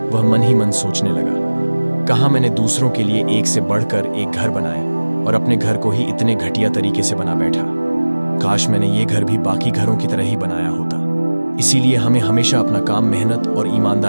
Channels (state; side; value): inverted; both; correlation -1.00